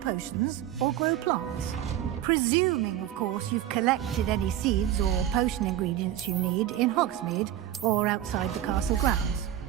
or grow plants. Presuming, of course, you've collected any seeds or potion ingredients you need in Hogsmeade or outside the castle grounds.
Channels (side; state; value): left; quieter; 12.0 dB